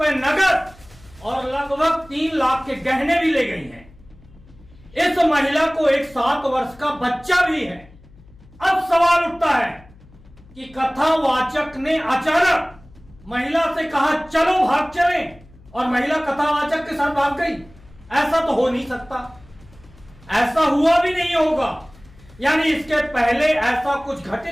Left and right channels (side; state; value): left; noise; hum, 25 dB below the sound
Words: नगद और लगभग 3 लाख के गहने भी ले गई हैं। इस महिला को एक 7 वर्ष का बच्चा भी है। अब सवाल उठता है कि कथावाचक ने अचानक महिला से कहा चलो भाग चलें, और महिला कथावाचक के साथ भाग गई। ऐसा तो हो नहीं सकता, ऐसा हुआ भी नहीं होगा। यानी इसके पहले ऐसा कुछ